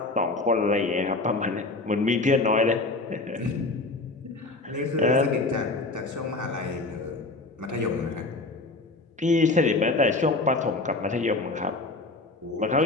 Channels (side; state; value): right; quieter; 3.2 dB